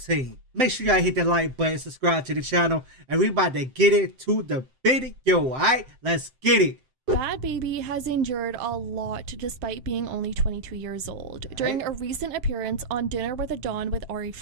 Make sure y'all hit that like button, subscribe to the channel, and we about to get into the video, alright? Let's get it. Bhad Bhabie has endured a lot despite being only 22 years old. During a recent appearance on Dinner with a Don with Ari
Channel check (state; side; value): late; left; 7.7 ms